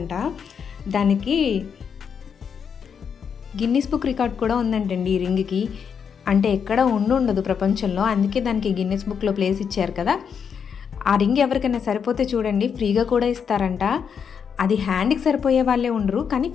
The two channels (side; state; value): right; quieter; 7.0 dB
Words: దానికి గిన్నిస్ బుక్ రికార్డ్ కూడా ఉందంటండి ఈ రింగ్కి. అంటే ఎక్కడ ఉండదు ప్రపంచంలో, అందుకే దానికి గిన్నిస్ బుక్లో ప్లేస్ ఇచ్చారు కదా. ఆ రింగ్ ఎవరికైనా సరిపోతే చూడండి ఫ్రీగా కూడా ఇస్తారంట. అది హ్యాండ్కి సరిపోయే వాళ్ళే ఉండరు, కానీ